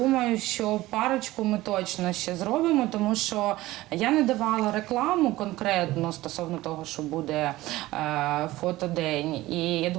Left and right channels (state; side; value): quieter; left; 17.5 dB